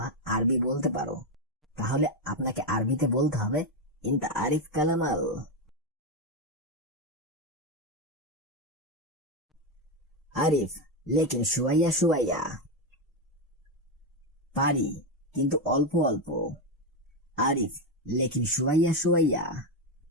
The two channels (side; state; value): both; normal; correlation 0.08